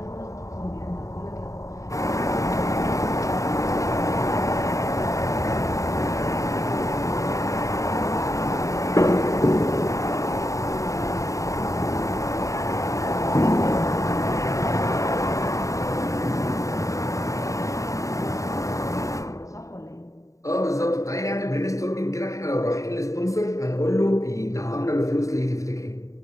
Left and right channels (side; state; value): right; late; 0.16 ms